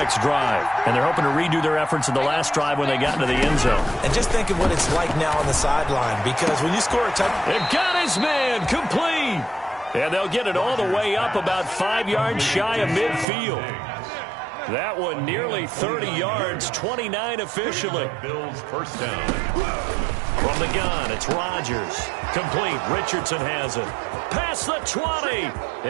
drive. And they're hoping to redo their efforts in the last drive when they got into the end zone. And just think of what it's like now on the sideline, because when you score a touchdown... They've got his man complete. And they'll get it all the way up about 5 yards shy of midfield. That one nearly 30 yards, 29 officially. Bills first down. From the gun, it's Rodgers. Complete. Richardson has it. Past the 20.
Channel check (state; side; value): drops out; left; at 13.2 s